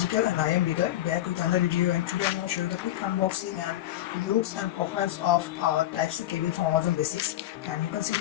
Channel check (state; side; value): quieter; right; 14.0 dB